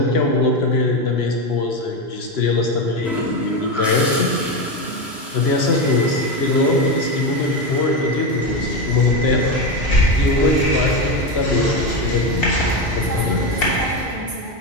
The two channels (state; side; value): normal; both; correlation 0.14